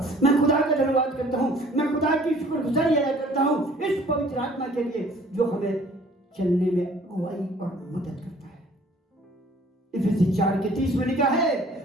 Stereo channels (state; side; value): normal; both; correlation 0.54